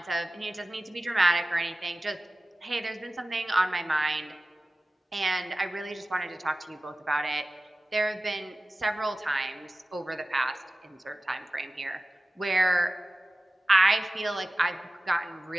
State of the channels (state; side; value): normal; both; correlation 0.96